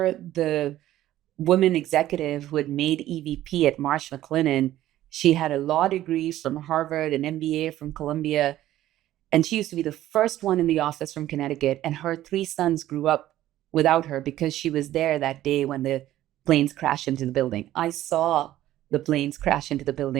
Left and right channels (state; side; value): quieter; left; 13.8 dB